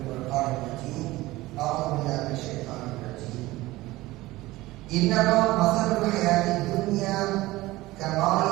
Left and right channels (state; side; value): quieter; left; 18.6 dB